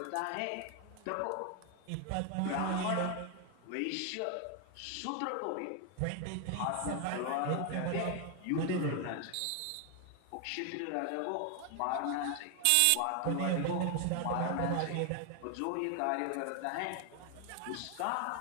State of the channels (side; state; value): both; different; correlation 0.00